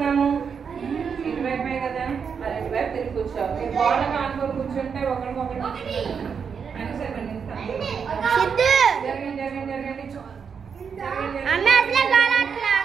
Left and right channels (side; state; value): left; quieter; 6.5 dB